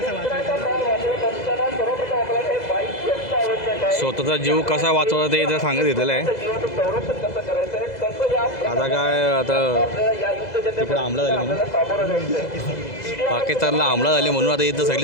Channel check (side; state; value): right; late; 2.0 ms